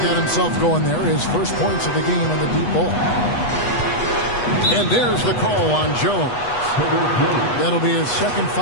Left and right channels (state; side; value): late; right; 8.2 ms